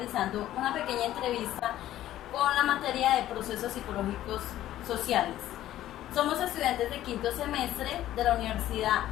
una pequeña entrevista con la materia de procesos psicológicos sociales. Somos estudiantes de quinto semestre de la Universidad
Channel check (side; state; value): right; quieter; 13.4 dB